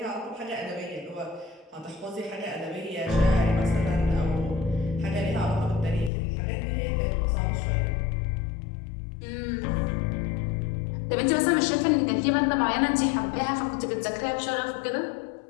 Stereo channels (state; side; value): drops out; right; at 6.1 s